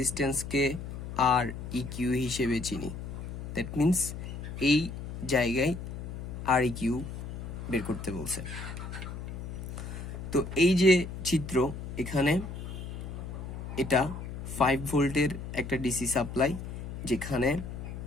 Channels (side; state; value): left; noise; hum, 8 dB below the sound